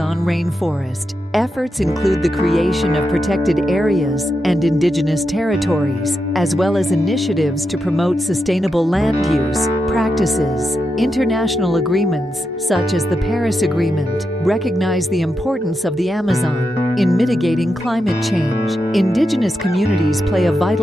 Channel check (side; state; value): both; normal; correlation 0.86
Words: rainforest. Efforts include the creation of protected areas and indigenous territories, as well as initiatives to promote sustainable land use practices. International agreements, such as the Paris Agreement, recognize the importance of the Amazon in mitigating climate change. Indigenous communities play a